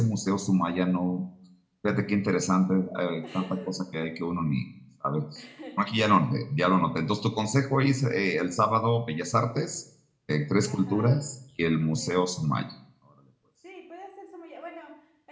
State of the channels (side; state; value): both; identical; correlation 1.00